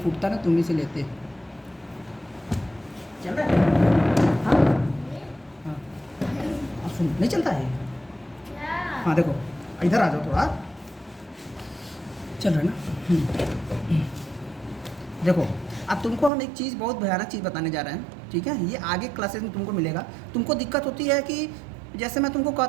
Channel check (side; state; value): left; drops out; at 16.3 s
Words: ना तुम ही से लेते। चल रहा है? हाँ हाँ सुन, नहीं चलता है? हाँ देखो, इधर आ जाओ थोड़ा। चल रहा है ना? देखो, अब तुमको हम एक चीज़, बहुत भयानक चीज़ बताने जा रहे हैं, ठीक है? ये आगे क्लासेस में तुमको मिलेगा। तुमको दिक्कत होती है कि जैसे मैं तुमको